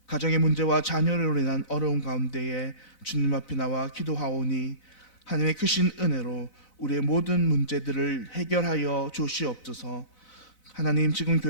가정의 문제와 자녀로 인한 어려움 가운데에 주님 앞에 나와 기도하오니 하나님의 크신 은혜로 우리의 모든 문제들을 해결하여 주시옵소서. 하나님, 지금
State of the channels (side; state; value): right; late; 4.0 ms